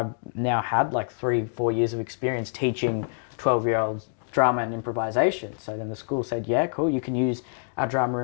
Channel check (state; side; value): silent; right; digital silence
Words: now had like 3-4 years of experience teaching 12-year-olds drama and improvisation. So then the school said, yeah, cool, you can use our drama